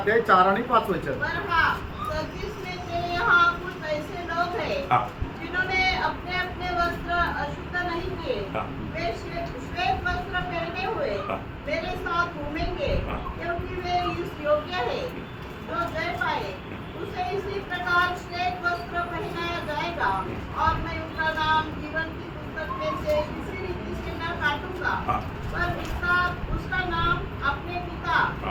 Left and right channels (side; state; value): both; identical; correlation 1.00